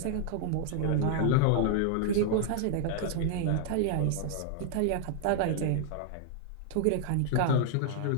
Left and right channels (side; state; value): both; different; correlation -0.01